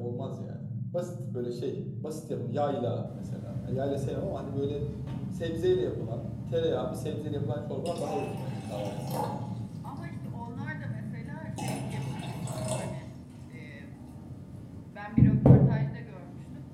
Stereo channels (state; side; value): identical; both; correlation 1.00